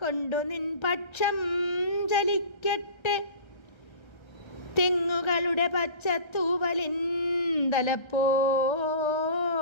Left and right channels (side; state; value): right; late; 1.3 ms